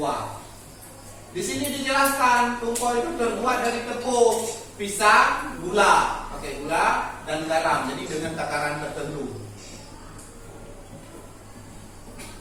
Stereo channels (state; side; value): identical; both; correlation 1.00